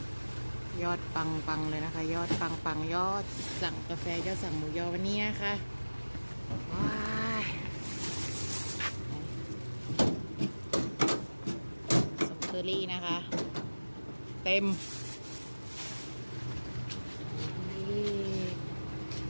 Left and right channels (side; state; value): both; inverted; correlation -1.00